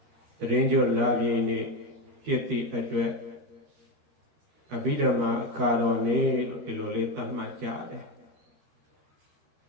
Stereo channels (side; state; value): left; late; 13 ms